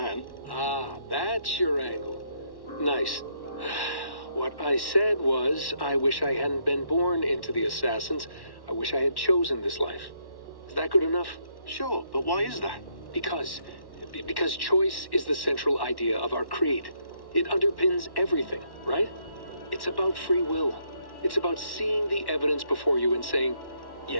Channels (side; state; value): right; late; 1.1 ms